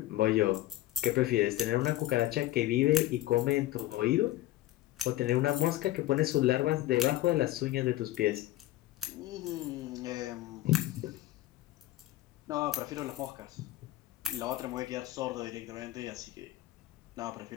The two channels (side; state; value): right; quieter; 15.4 dB